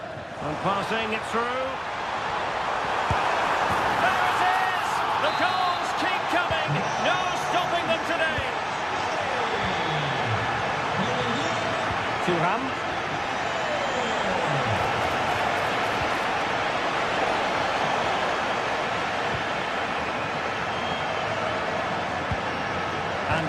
And passing it through. There it is! The goals keep coming. No stopping them today. Thuram. And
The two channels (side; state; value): both; identical; correlation 1.00